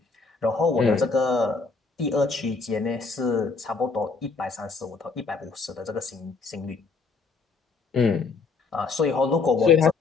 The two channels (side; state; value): right; quieter; 4.4 dB